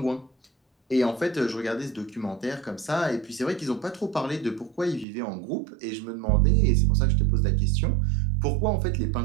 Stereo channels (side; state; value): left; drops out; at 5.1 s